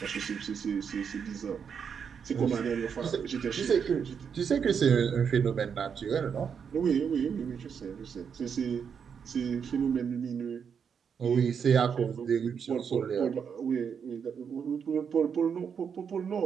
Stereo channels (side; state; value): left; quieter; 6.9 dB